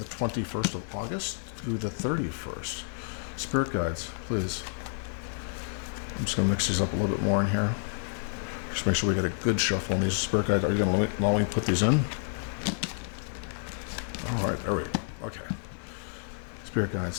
21st of August through the 31st. Spirit guides, please. I'm just going to mix these up a little bit more in here. Just make sure we get a good shuffle on these. Spirit guides, are you going to allow me to put these in? All right, there we go. Okay. Spirit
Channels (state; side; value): silent; right; 58 dB below the other